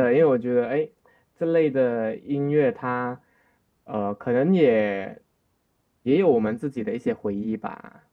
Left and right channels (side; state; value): both; identical; correlation 1.00